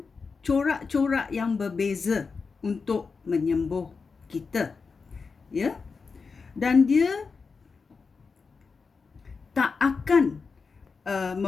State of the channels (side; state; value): right; quieter; 4.9 dB